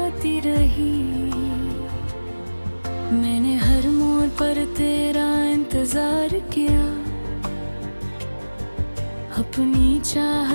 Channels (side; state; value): both; inverted; correlation -1.00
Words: रही। मैंने हर मोड़ पर तेरा इंतजार किया, अपनी